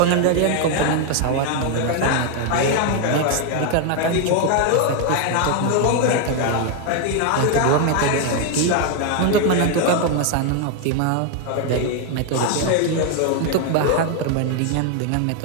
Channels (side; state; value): both; different; correlation 0.01